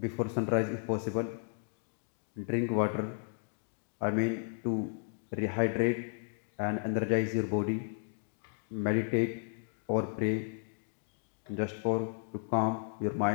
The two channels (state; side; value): silent; right; 55 dB below the other